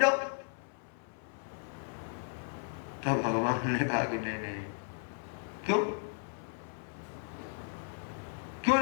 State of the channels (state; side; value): silent; right; 54 dB below the other